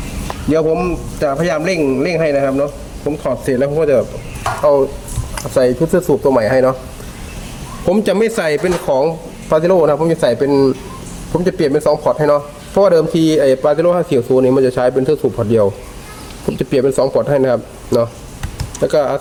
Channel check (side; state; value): both; identical; correlation 1.00